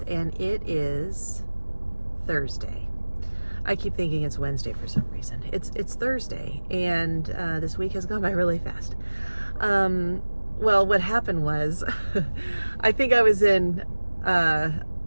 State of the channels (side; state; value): both; inverted; correlation -1.00